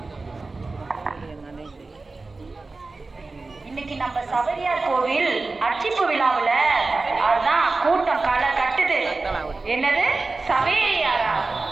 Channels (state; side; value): quieter; left; 3.6 dB